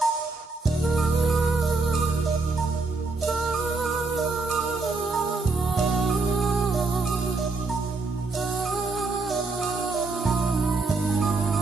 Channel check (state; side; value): quieter; left; 3.8 dB